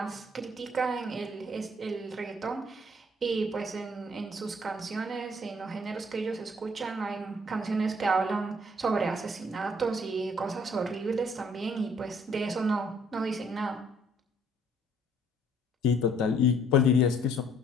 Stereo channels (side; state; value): both; normal; correlation 0.61